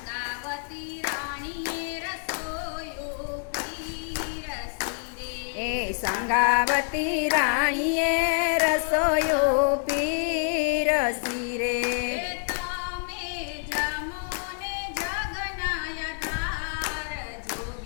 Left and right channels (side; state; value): right; silent; 60 dB below the other